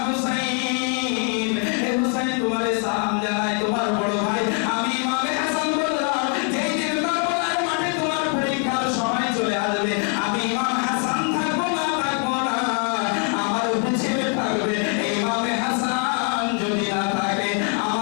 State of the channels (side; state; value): right; quieter; 34.8 dB